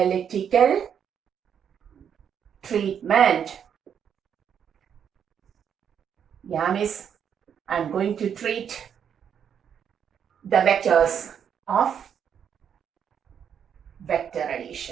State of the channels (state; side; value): quieter; left; 8.2 dB